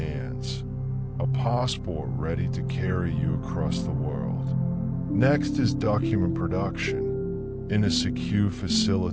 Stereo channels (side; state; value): both; identical; correlation 1.00